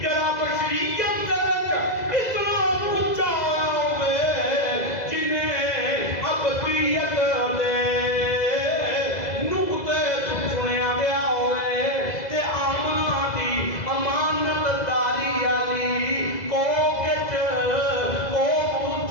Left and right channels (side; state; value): right; late; 2.0 ms